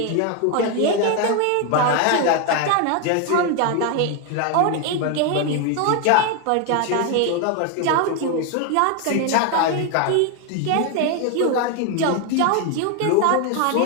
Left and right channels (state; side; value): different; both; correlation 0.01